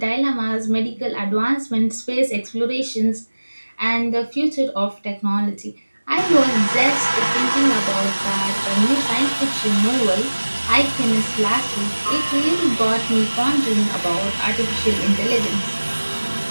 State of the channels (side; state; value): both; inverted; correlation -1.00